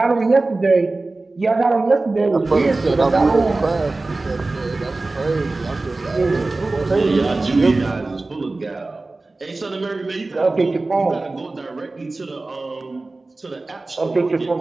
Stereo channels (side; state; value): left; quieter; 3.2 dB